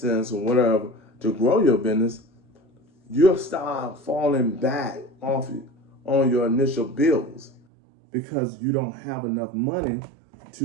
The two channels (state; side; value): drops out; left; at 7.6 s